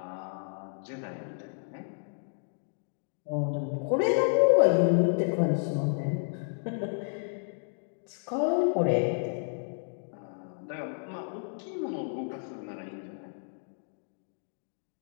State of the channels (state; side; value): silent; right; digital silence